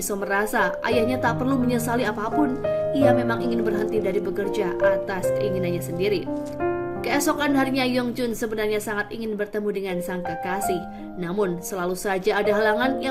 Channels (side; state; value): both; identical; correlation 1.00